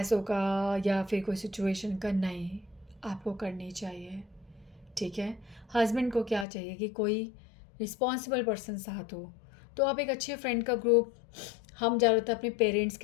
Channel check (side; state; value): right; drops out; at 6.5 s